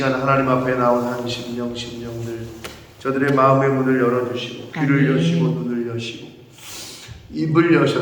하나님 앞에 나온 한 심령들 저들의 마음의 문을 열어주시고 귀를 여시고 눈을 여시고 입을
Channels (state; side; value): identical; both; correlation 1.00